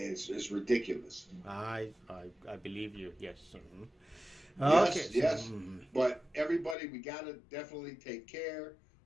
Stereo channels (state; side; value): drops out; right; at 6.8 s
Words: ridiculous. I believe you. Yes. Yes, okay. Yes. But everybody, we got to definitely take care.